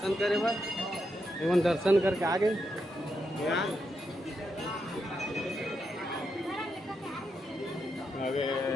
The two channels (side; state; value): both; normal; correlation 0.83